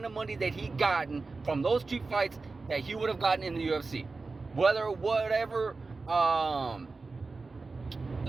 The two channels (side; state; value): left; quieter; 3.9 dB